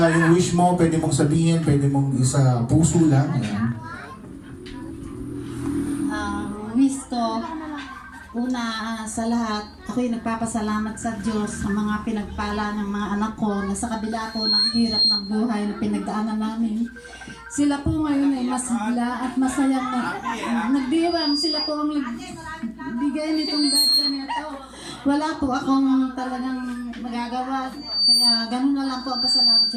yung wish mo, pwede mong sabihin, pwede mong isa puso lang. Ayan. wish ko, una sa lahat, ako'y nagpapasalamat sa Diyos sa mga pinagpala ng mga anak ko na sa kabila ko ng hirap ng buhay na pinagdaanan namin. Sila po ngayon ay masigla at masayang nagdiwang. Sila po ang nagbigay nitong birthday nito. Wala po akong talagang magagawa. Kaya ganun na lang po ang pasalamat ko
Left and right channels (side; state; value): both; identical; correlation 1.00